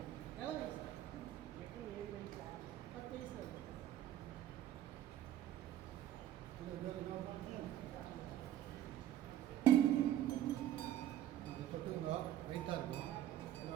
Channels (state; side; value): quieter; left; 12.1 dB